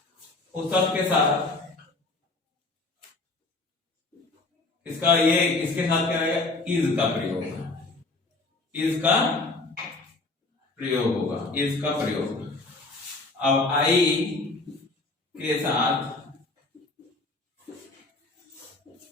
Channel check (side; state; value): right; quieter; 3.3 dB